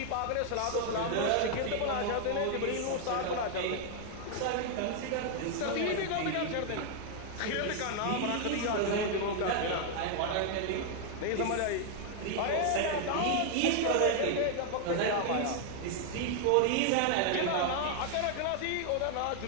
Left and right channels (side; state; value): both; different; correlation 0.00